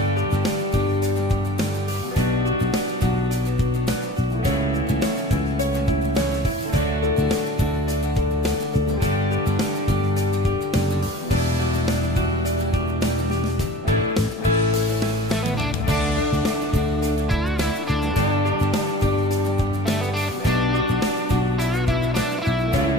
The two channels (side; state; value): both; normal; correlation 0.44